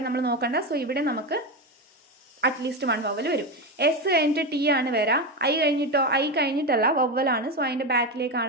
നമ്മൾ നോക്കണ്ട. സോ ഇവിടെ നമുക്ക് അറ്റ്ലീസ്റ്റ് 1 വവ്വൽ വരും. എസ് കഴിഞ്ഞിട്ട് ടി ആണ് വരാം. ഐ കഴിഞ്ഞിട്ടോ, ഐ കഴിഞ്ഞിട്ടല്ല, വവ്വലാണ്. സോ അതിൻ്റെ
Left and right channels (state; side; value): normal; both; correlation 0.15